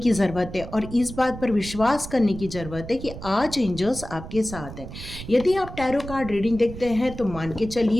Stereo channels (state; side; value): noise; right; rumble, 12 dB below the sound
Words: ज़रूरत है और इस बात पर विश्वास करने की ज़रूरत है कि आज एंजल्स आपके साथ हैं। यदि आप टैरो कार्ड रीडिंग देखते हैं तो मान के